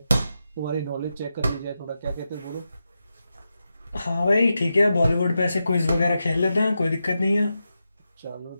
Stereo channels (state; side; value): inverted; both; correlation -0.89